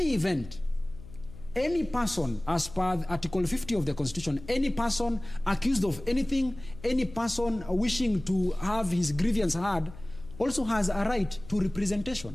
event, any person, as per Article 50 of the Constitution, any person accused of anything, any person wishing to have his grievance heard, also has a right to representation.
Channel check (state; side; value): noise; left; hum, 16 dB below the sound